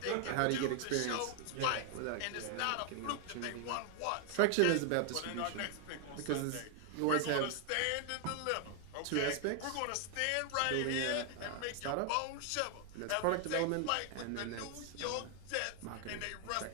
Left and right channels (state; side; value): different; both; correlation 0.00